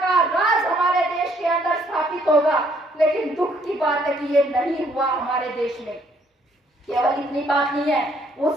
राज हमारे देश के अंदर स्थापित होगा। लेकिन दुख की बात है कि ये नहीं हुआ हमारे देश में। केवल इतनी बात नहीं है,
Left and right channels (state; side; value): normal; both; correlation 0.66